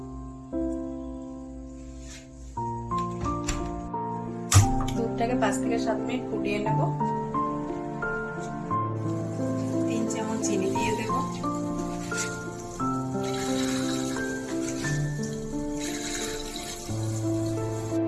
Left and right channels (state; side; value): identical; both; correlation 1.00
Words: দুধটাকে 5 থেকে 7 মিনিট ফুটিয়ে নেব। 3 চামচ চিনি দিয়ে দেব।